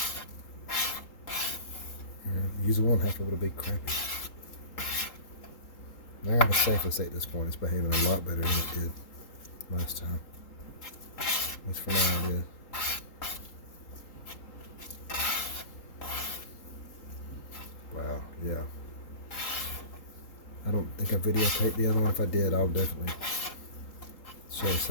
usable and half of it will be crappy. Now I'm safely say at this point it's behaving a lot better than it did last time. At least for now it is. Wow, yeah. I don't think I videotaped the other one. If I did, I'll definitely show it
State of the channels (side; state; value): right; late; 3.8 ms